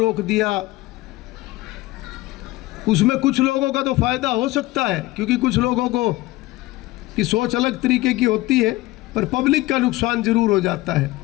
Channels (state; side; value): quieter; right; 19.1 dB